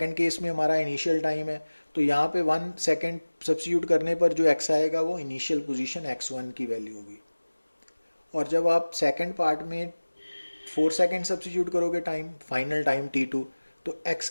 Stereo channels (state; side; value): inverted; both; correlation -1.00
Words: केस में हमारा इनिशियल टाइम है, तो यहाँ पे 1 सेकेंड सब्स्टिट्यूट करने पर जो x आएगा वो इनिशियल पोजीशन x1 की वैल्यू होगी। और जब आप सेकेंड पार्ट में 4 सेकेंड सब्स्टिट्यूट करोगे टाइम, फाइनल टाइम t2, तो x